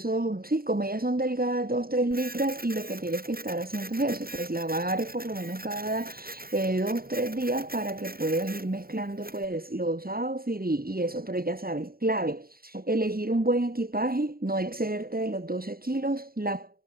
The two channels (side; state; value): left; late; 0.43 ms